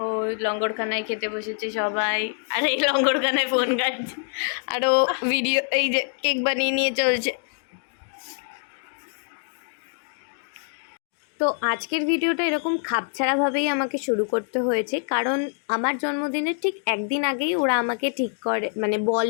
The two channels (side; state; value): right; silent; digital silence